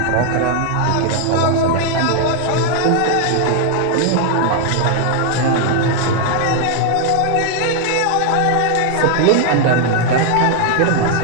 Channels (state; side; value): different; both; correlation 0.00